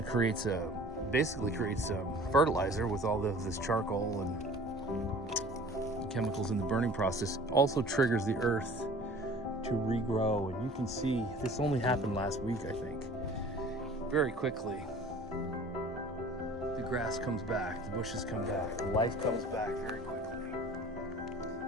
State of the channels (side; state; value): both; normal; correlation 0.46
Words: basically creates fertilizer with all this charcoal and chemicals in the burning process. Also triggers the earth to regrow. And you can see this only happened last week, I think. Very quickly, the grass comes back, the bushes come back, life comes back very quickly.